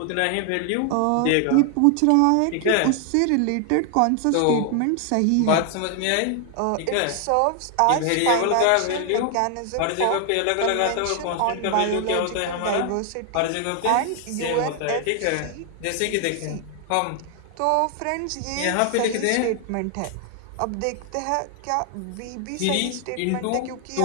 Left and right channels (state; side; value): different; both; correlation 0.00